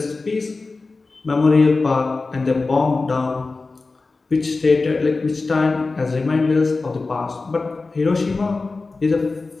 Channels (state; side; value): quieter; right; 3.7 dB